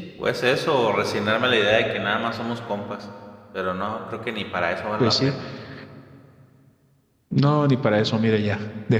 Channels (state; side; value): identical; both; correlation 1.00